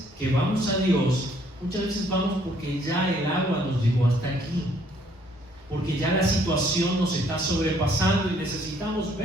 que vamos a Dios, muchas veces vamos porque ya el agua nos llegó hasta aquí, porque ya la situación nos está sobrepasando y necesitamos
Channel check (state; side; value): normal; both; correlation 0.64